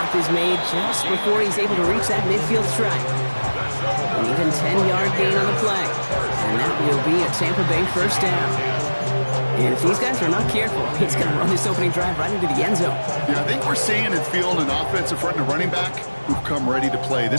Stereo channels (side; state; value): both; inverted; correlation -1.00